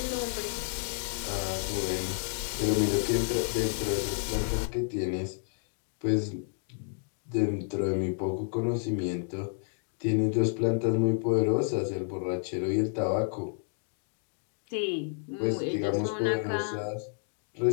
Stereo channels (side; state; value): right; silent; 58 dB below the other